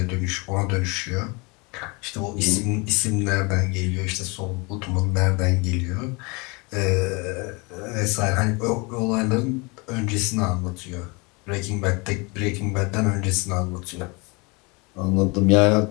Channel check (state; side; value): quieter; right; 28.4 dB